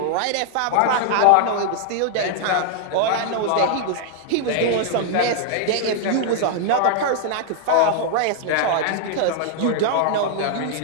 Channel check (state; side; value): different; both; correlation 0.00